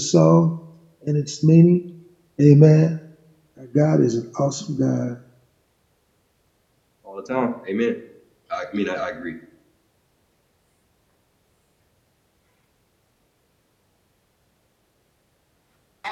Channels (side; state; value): both; identical; correlation 1.00